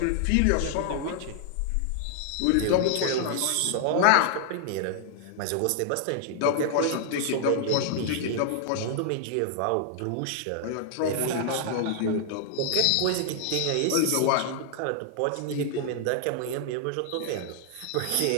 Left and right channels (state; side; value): different; both; correlation 0.00